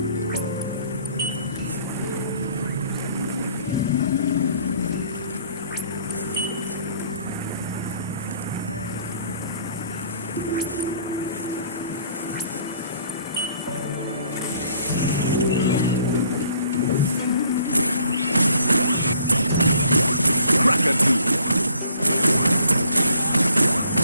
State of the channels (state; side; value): inverted; both; correlation -0.60